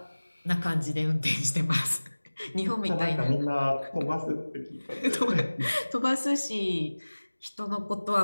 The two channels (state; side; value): inverted; both; correlation -1.00